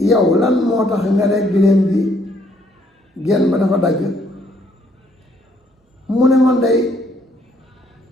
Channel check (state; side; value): normal; both; correlation 0.68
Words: yow lan moo tax nga ne giléem bi genn ba dafa dagg mu ne man day